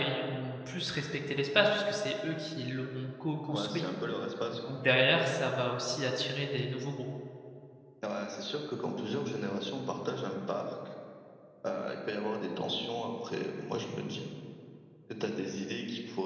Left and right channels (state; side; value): identical; both; correlation 1.00